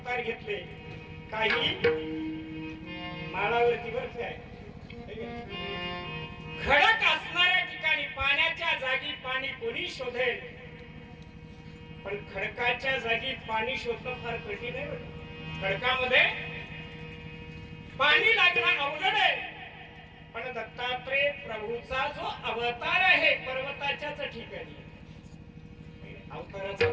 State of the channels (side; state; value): both; identical; correlation 1.00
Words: घेतले. काही माळावरती, बरं काय, खडक असणाऱ्या ठिकाणी, पाण्याच्या जागी पाणी कोणी शोधेल, पण खडकाच्या जागी पाणी शोधणं फार कठीण आहे. खडकामध्ये पाणी लागणं अवघड आहे. पण दत्तात्रेय प्रभूचा जो अवतार आहे पर्वताच्याच ठिकाणी, अवताराचा